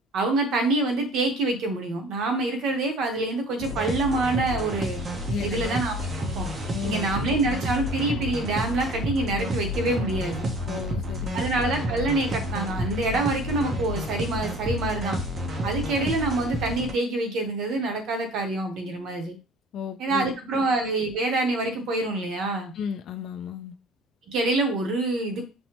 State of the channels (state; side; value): normal; both; correlation 0.46